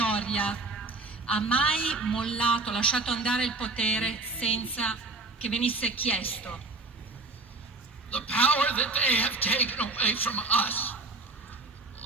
ha mai mollato, lasciato andare il potere senza che venisse chiesto. The power that they have taken away from us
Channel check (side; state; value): left; quieter; 3.5 dB